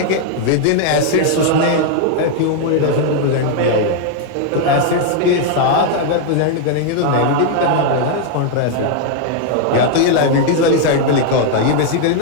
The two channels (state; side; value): different; both; correlation 0.00